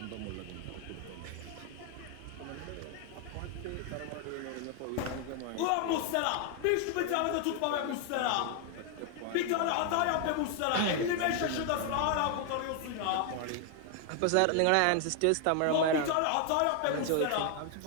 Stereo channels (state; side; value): different; both; correlation 0.00